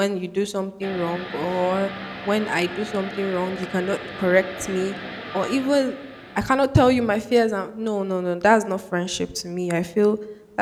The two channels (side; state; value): both; identical; correlation 1.00